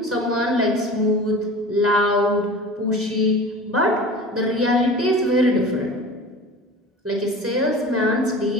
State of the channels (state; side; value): normal; both; correlation 0.37